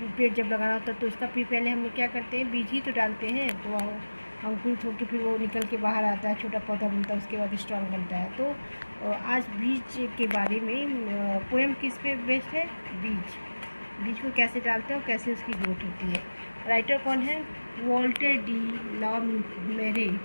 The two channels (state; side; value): inverted; both; correlation -1.00